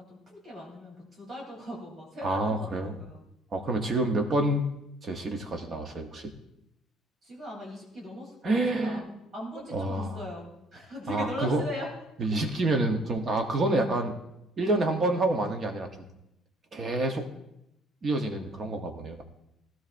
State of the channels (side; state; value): both; normal; correlation 0.58